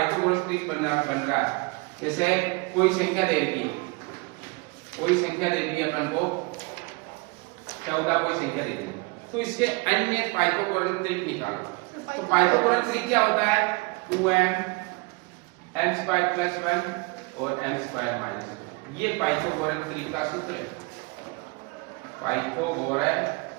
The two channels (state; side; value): quieter; left; 28.2 dB